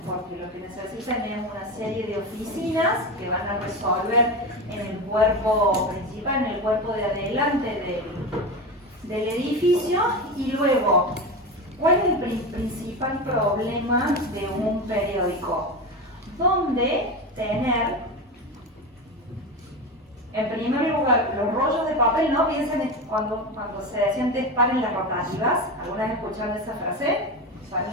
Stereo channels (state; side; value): normal; both; correlation 0.21